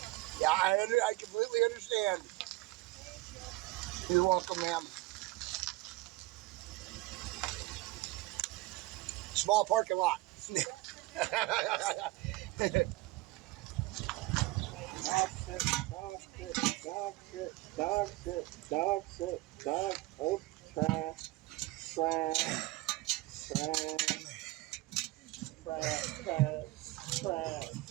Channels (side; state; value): left; quieter; 20.0 dB